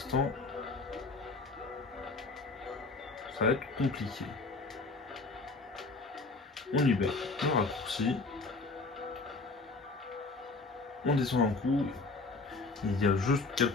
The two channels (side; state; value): right; quieter; 3.7 dB